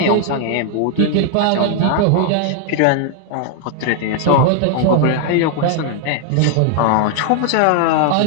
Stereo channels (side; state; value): both; different; correlation 0.00